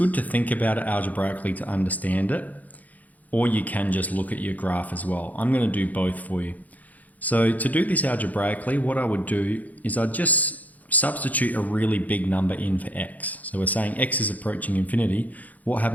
to think about it algebraically to understand it, or you can just look at your graph as well. I'm going to do both for you. So to do this algebraically, what I would do is I'd just substitute a really big number in for x. So we're saying x is approaching infinity. What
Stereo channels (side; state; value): right; late; 0.078 ms